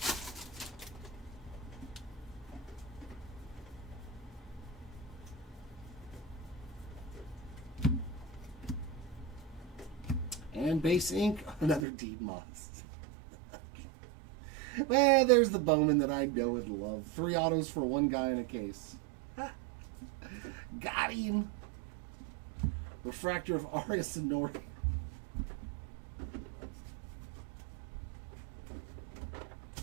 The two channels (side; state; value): left; drops out; at 11.9 s